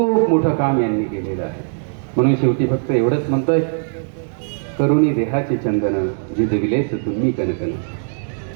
मोठं काम यांनी केलेलं आहे. म्हणून शेवटी फक्त एवढंच म्हणतोय, करुणी देहाचे चंदन झिजविलेस तुम्ही कनकन,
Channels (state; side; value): silent; left; digital silence